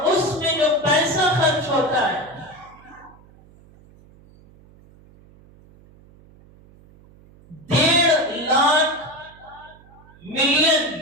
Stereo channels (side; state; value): right; noise; hum, 26 dB below the sound